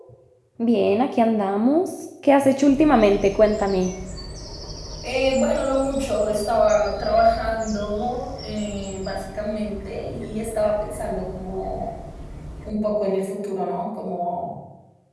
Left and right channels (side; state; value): both; identical; correlation 1.00